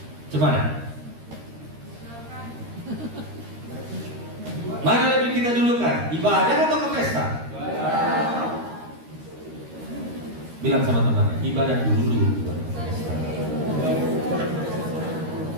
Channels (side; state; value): left; late; 13 ms